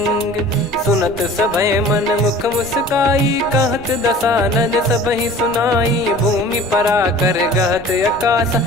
सुनत सभय मन मुख मुस्काई कहत दसानन सबहि सुनाई। भूमि परा कर गहत आकाशा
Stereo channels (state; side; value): noise; right; rumble, 18 dB below the sound